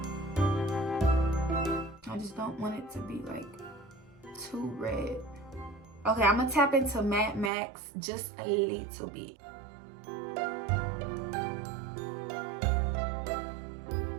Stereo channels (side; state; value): left; drops out; at 7.5 s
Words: I just don't want it to be like too red. Okay, I'm gonna tap into Matte Max just a little bit.